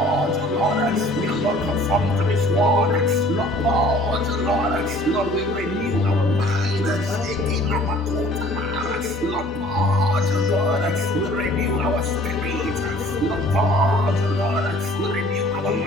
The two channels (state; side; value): normal; both; correlation 0.52